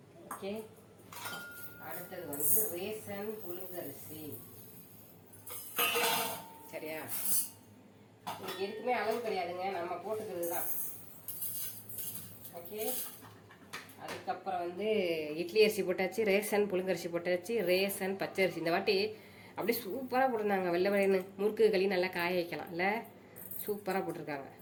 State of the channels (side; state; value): both; identical; correlation 1.00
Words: ஓகே. அடுத்தது வந்து ரேசன் புழுங்கரிசி. சரியா? இது எதுக்குமே அளவு கிடையாதுங்க, நம்ம போட்டுக்கிறது தான். ஓகே. அதுக்கப்புறம் வந்து இட்லி அரிசி போட்டாச்சு, ரேசன் புழுங்கரிசி போட்டாச்சு, ரேசன் பச்சரிசி. இந்த வாட்டி அப்படியே சூப்பராக போட்டிருந்தாங்க. வெள்ளை வெள்ளைன்னு முறுக்கு களி நல்லா காய வைக்கலாம் இல்லை, சூப்பராக போட்டிருக்காங்க.